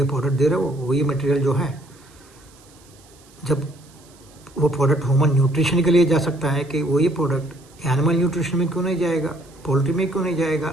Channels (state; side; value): noise; right; hiss, 27 dB below the sound